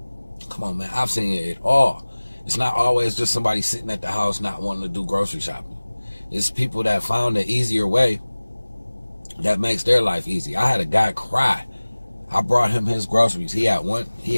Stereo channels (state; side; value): inverted; both; correlation -1.00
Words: come on, man, I've seen it all. It's not always just somebody sitting at the house not wanting to do grocery shopping. It's people that found an easier way that makes their life easy. I had a guy cry. I brought him his groceries. He had one